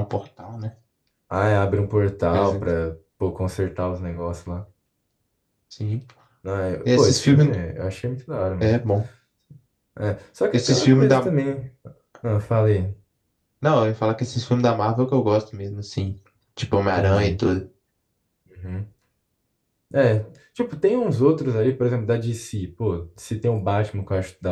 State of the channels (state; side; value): identical; both; correlation 1.00